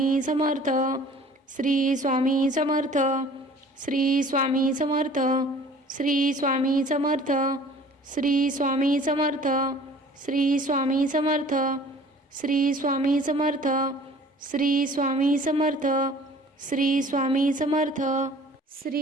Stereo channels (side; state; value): both; normal; correlation 0.49